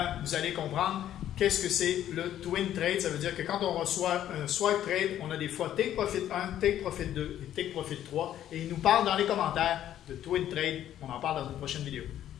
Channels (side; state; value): right; quieter; 11.5 dB